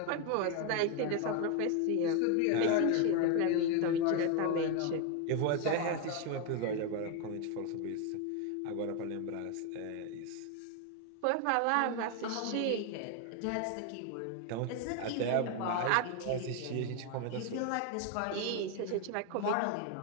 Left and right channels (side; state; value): both; different; correlation 0.01